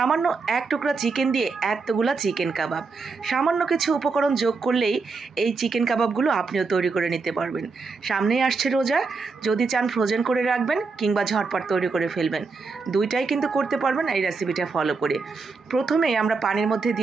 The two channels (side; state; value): left; quieter; 4.4 dB